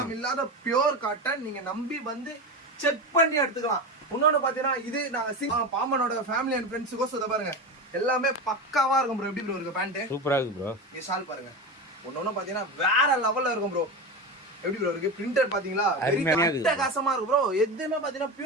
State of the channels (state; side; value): normal; both; correlation 0.22